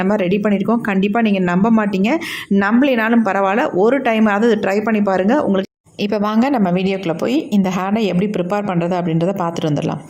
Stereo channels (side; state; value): both; identical; correlation 1.00